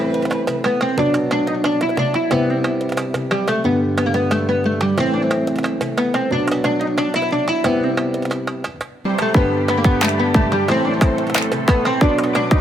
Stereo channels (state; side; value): normal; both; correlation 0.82